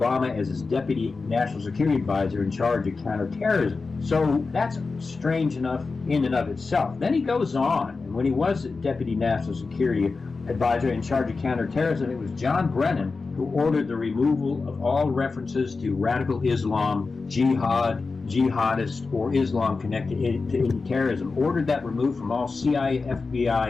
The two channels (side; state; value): right; quieter; 4.2 dB